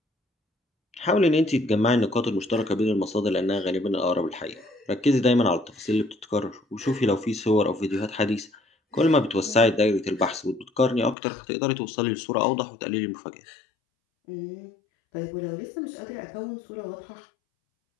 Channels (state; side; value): drops out; right; at 11.2 s